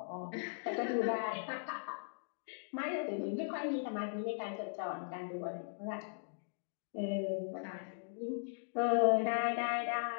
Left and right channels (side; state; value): right; silent; digital silence